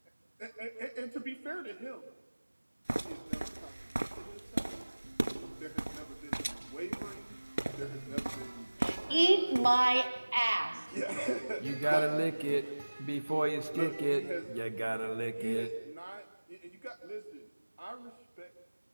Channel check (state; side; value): inverted; both; correlation -1.00